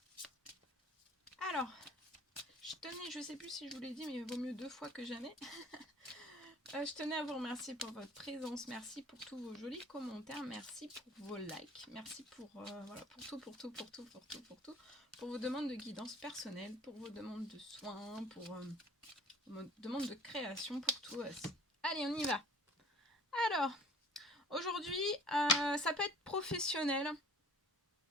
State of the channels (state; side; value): normal; both; correlation 0.49